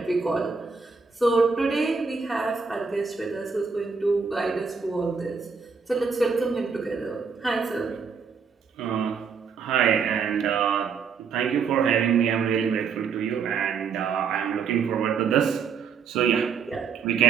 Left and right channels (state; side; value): quieter; left; 5.6 dB